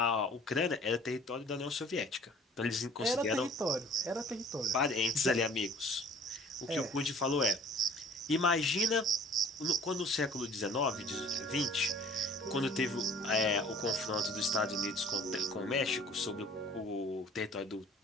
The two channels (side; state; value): both; normal; correlation 0.51